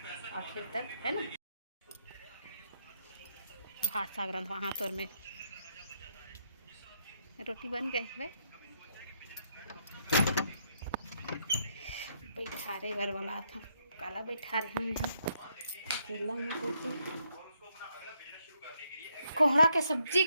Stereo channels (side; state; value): both; inverted; correlation -0.76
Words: आखिर तक है ना। भात साग रंधवा हाथ और में रोटी बन गई है। बैठारे घर वाला था काला बैठा रहे हैं यहाँ अकेला में कोई कोहरा के सब्जी